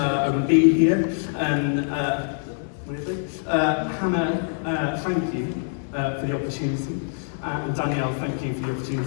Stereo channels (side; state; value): right; silent; digital silence